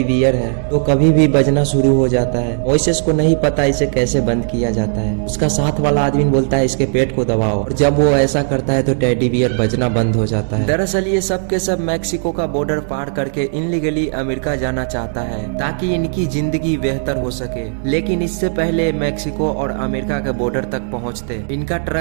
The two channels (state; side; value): silent; left; digital silence